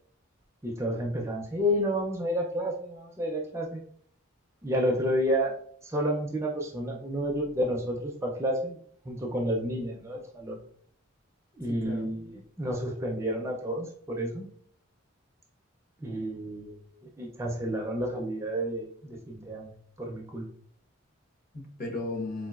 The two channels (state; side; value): normal; both; correlation 0.37